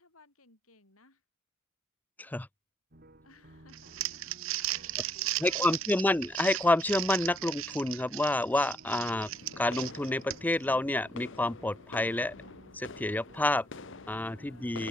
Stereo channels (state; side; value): normal; both; correlation 0.70